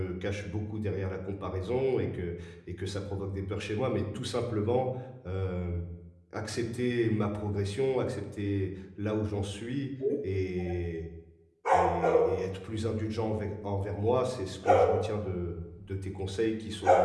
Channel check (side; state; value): both; identical; correlation 1.00